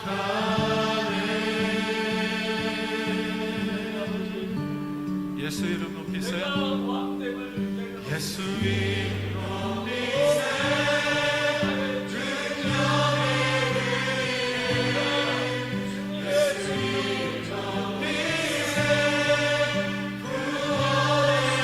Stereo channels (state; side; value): identical; both; correlation 1.00